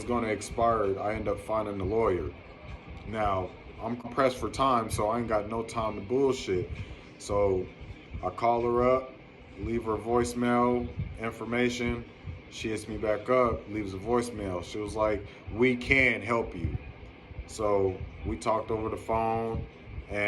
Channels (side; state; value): both; identical; correlation 1.00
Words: going to expire, I ended up finding a lawyer. Now, I'm pressed for time, so I ain't got no time to bullshit. So I call her up, leave her voicemail information. She hits me back up, leaves a voicemail. She was like, we can help you. So we talked over the phone,